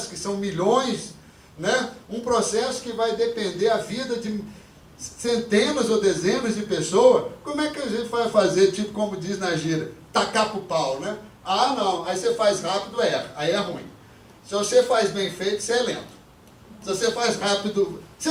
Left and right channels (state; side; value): identical; both; correlation 1.00